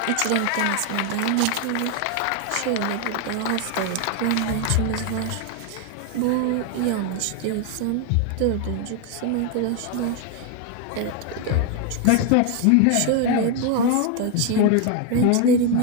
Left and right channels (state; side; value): different; both; correlation 0.01